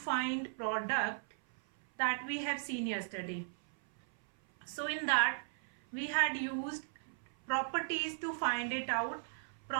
product, that we have seen yesterday. So in that we had used properties to find it out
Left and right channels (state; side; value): silent; left; 53 dB below the other